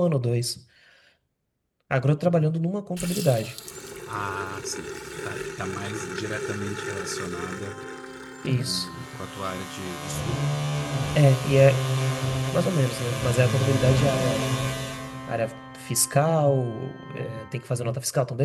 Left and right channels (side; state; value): both; identical; correlation 1.00